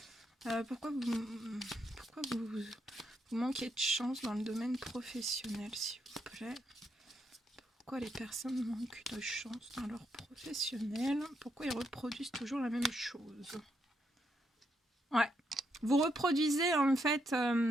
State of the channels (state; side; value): normal; both; correlation 0.78